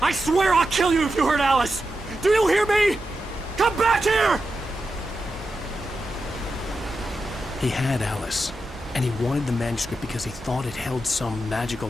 I swear I'll kill you if you hurt Alice! Do you hear me? Come back here! He had Alice, and he wanted the manuscript because he thought it held some magical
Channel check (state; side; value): normal; both; correlation 0.89